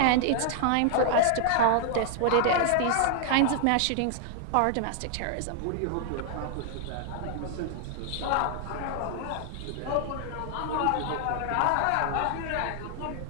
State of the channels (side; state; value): both; different; correlation 0.00